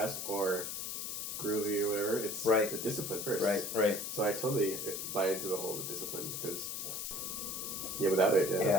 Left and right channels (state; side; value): noise; left; hiss, 4 dB below the sound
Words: or groovy or whatever, it's the discipline first. Right. So I totally buy into the whole discipline because, without it,